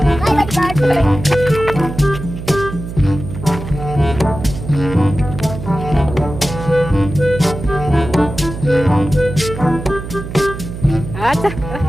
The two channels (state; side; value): noise; right; hum, 9 dB below the sound